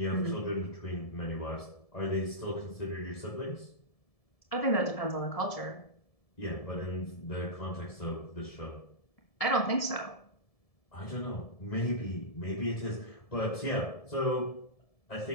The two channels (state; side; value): late; right; 1.7 ms